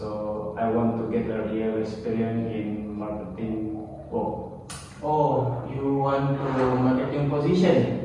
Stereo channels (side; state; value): both; identical; correlation 1.00